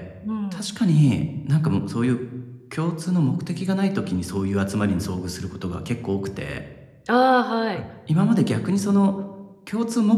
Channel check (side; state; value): both; identical; correlation 1.00